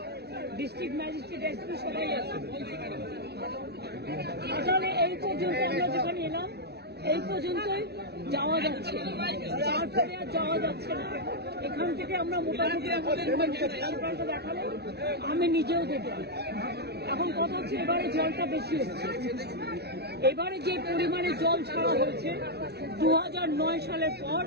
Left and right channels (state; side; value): late; left; 0.48 ms